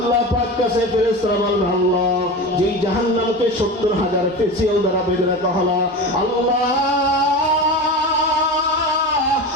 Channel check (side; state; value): both; normal; correlation 0.28